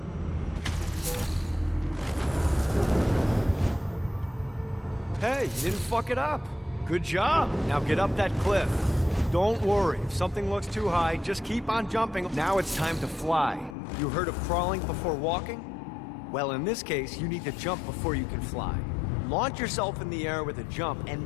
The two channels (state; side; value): drops out; right; at 13.8 s